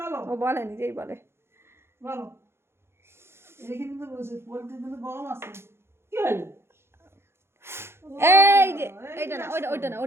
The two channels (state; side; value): late; left; 0.12 ms